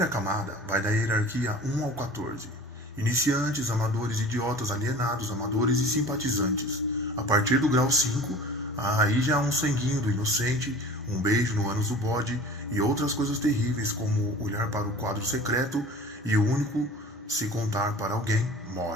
camada, vai da hierarquia 1 ao 14. Iniciantes, amadores, idiotas, alienados, amadores e simpatizantes. A partir do grau 5, aí já há um sanguinho do inocente, um beijo no ânus do bode e outras coisas terríveis como olhar para o quadro secreto e o único, se contar para alguém,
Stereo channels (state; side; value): normal; both; correlation 0.41